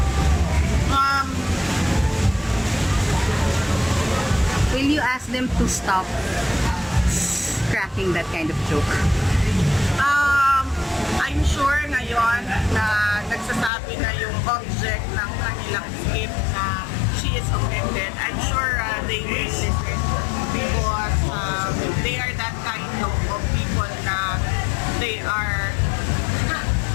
Will you ask them to stop cracking that kind of joke? I'm sure ngayon na nagsasabi na yung object ng kanilang skip na she is offended. I'm sure they will listen because they are that kind of people na they are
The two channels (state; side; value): drops out; right; at 13.7 s